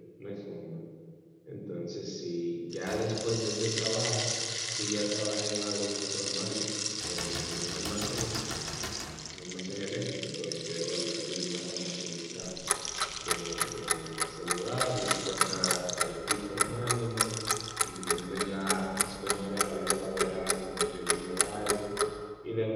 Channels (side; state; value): both; identical; correlation 1.00